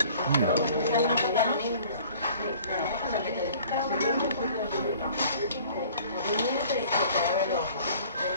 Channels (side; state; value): both; inverted; correlation -0.50